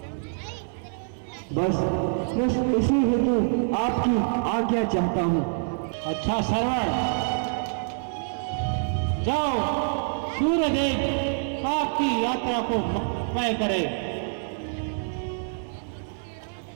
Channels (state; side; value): silent; left; 61 dB below the other